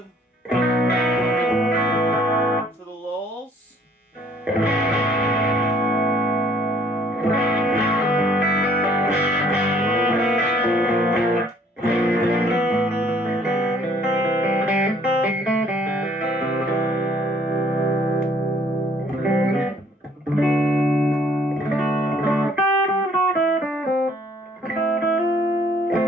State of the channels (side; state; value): both; normal; correlation 0.61